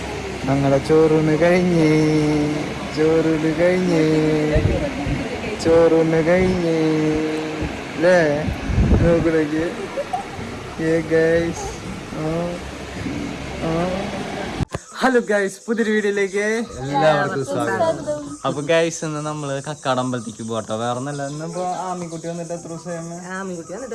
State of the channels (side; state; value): both; identical; correlation 1.00